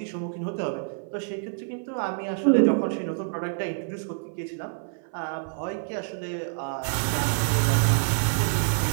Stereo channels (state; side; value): silent; left; 59 dB below the other